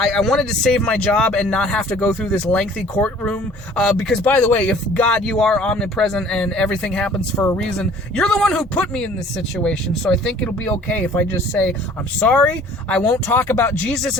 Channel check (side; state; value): both; normal; correlation 0.52